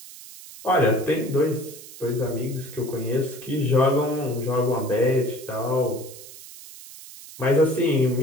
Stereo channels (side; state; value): right; noise; hiss, 16 dB below the sound